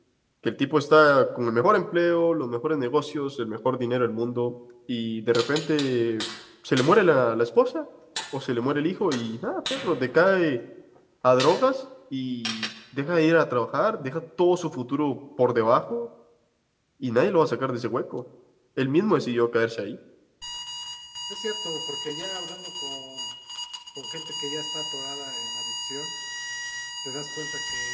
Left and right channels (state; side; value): identical; both; correlation 1.00